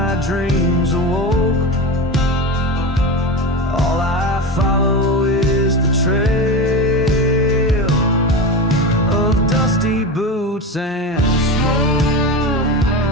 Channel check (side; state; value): both; normal; correlation 0.23